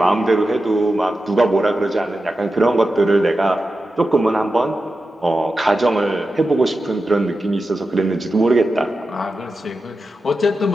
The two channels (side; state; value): both; normal; correlation 0.91